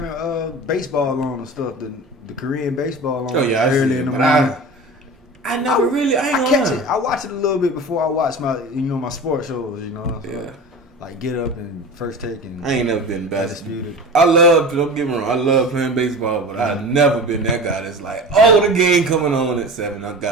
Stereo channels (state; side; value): normal; both; correlation 0.34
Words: baseball on and stuff, the Korean baseball on. Oh yeah, early in the morning. I never really. I ain't catch gonna it. I watch it a little bit before I watch my sports shows. You know. So yeah. Like Get Up and First Take and. I ain't never been basketball. Undisputed. Don't get me wrong. I love playing baseball, but I've never been that guy that's like, the game coming on at 7. I